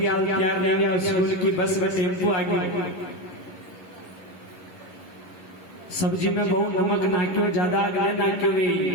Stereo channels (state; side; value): late; right; 11 ms